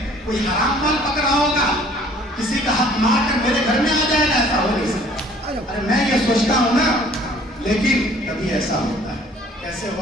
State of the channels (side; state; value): both; normal; correlation 0.55